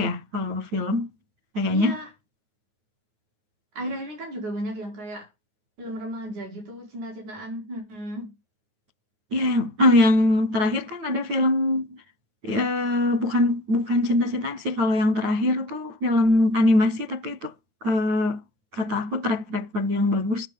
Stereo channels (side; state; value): left; late; 9.5 ms